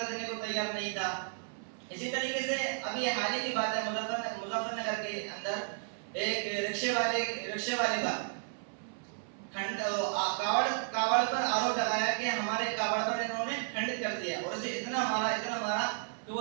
دینے کو تیار نہیں تھا. اسی طریقے سے ابھی حال ہی کی بات ہے، مظفر نگر کے اندر ایک رکشے والے پر کاوڑ پر آروپ لگایا کہ ہمارے کاوڑ پر انہوں نے کھنڈت کر دیا اور اسے اتنا مارا کہ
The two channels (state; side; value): silent; left; 56 dB below the other